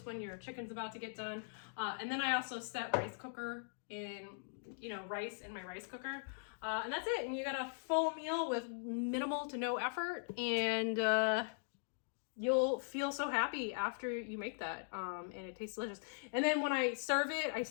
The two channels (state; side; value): silent; right; digital silence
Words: when your chicken's about to get done. And then I also set rice cooker in, you know, rice in my rice cooker. And that's it. And you got a full meal with minimal to no effort. And you'll feel so happy after you make that. And it tastes delicious. And then when I serve it, I